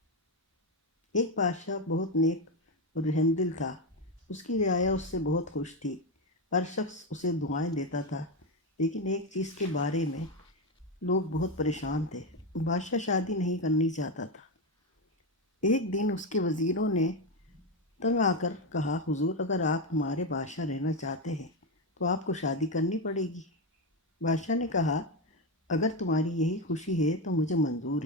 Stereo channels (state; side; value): normal; both; correlation 0.11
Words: ایک بادشاہ بہت نیک اور رحم دل تھا۔ اس کی رعایا اس سے بہت خوش تھی۔ ہر شخص اسے دعائیں دیتا تھا، لیکن ایک چیز کے بارے میں لوگ بہت پریشان تھے۔ بادشاہ شادی نہیں کرنی چاہتا تھا۔ ایک دن اس کے وزیروں نے تنگ آ کر کہا، حضور، اگر آپ ہمارے بادشاہ رہنا چاہتے ہیں تو آپ کو شادی کرنی پڑے گی۔ بادشاہ نے کہا، اگر تمہاری یہی خوشی ہے تو مجھے منظور